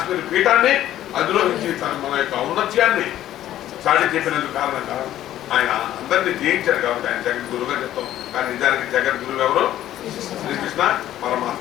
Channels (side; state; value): right; quieter; 12.8 dB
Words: పీఠాన్ని అధిరోహించి మన యొక్క ఔన్నత్యాన్ని చాటి చెప్పినందుకు కారణంగా ఆయన అందరినీ జయించాడు. కాబట్టి ఆయన జగద్గురువుగా చెప్తాం. కానీ నిజానికి జగద్గురువు ఎవరు? శ్రీకృష్ణ